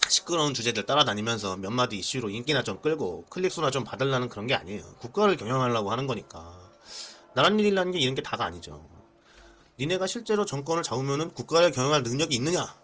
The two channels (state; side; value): identical; both; correlation 1.00